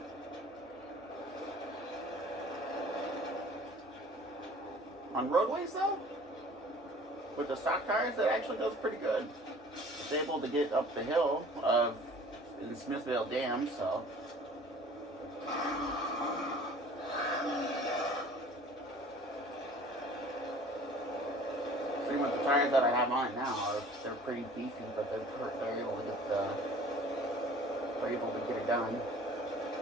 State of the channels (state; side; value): normal; both; correlation 0.48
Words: On roadways though, with the stock tires, it actually goes pretty good. It's able to get up the hill in Smithville Dam, so. With the tires that I have on it now, they're pretty beefy, but they're able to get it done.